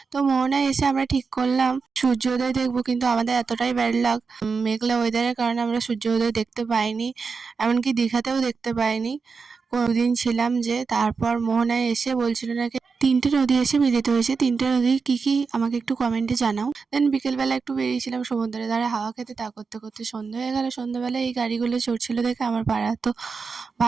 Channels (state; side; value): quieter; left; 5.0 dB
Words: তো মোহনায় এসে আমরা ঠিক করলাম সূর্যোদয় দেখবো, কিন্তু আমাদের এতটাই ব্যাড লাক, মেঘলা ওয়েদারের কারণে আমরা সূর্যোদয় দেখতে পাইনি, এমনকি দীঘাতেও দেখতে পাইনি। কোনোদিন ছিলাম যে তারপর মোহনায় এসে বলছিল নাকি 3টে নদী এসে মিলিত হয়েছে। 3টে নদী কী কী আমাকে একটু কমেন্টে জানাও। দেন বিকেলবেলা একটু বেরিয়েছিলাম সমুদ্রের ধারে হাওয়া খেতে, তা করতে করতে সন্ধ্যা হয়ে গেল। সন্ধ্যাবেলায় এই গাড়িগুলো চড়ছিল দেখে আমার পাড়া তো